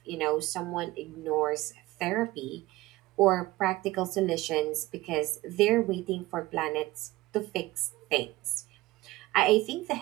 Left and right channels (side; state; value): left; quieter; 18.8 dB